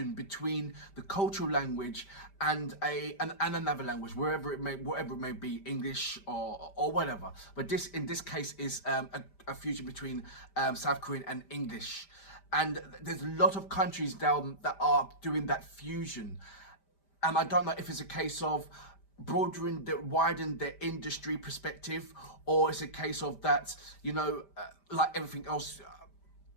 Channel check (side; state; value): right; late; 5.1 ms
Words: between the cultural language and another language, whatever it may be, English or whatever. But this, in this case, is a fusion between South Korean and English. And there's a lot of countries now that are doing that fusion. And I don't know if it's a case of widen their industry perspective, or it's a case of that, you know, like everything else,